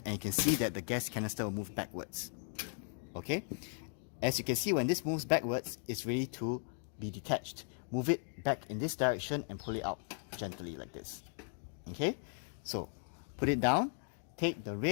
and you can see that the gas canister will move backwards. Okay, as you can see, when this moves backwards, it's ready to be detached. Move it back in this direction and pull it out gently like this. Okay, so put it down. Take the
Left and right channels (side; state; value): right; silent; 53 dB below the other